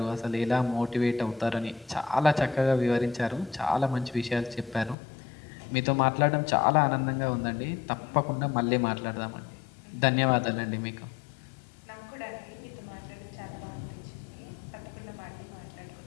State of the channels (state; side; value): drops out; right; at 5.0 s